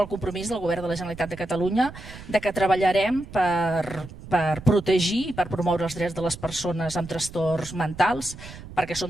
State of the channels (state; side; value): noise; right; rumble, 15 dB below the sound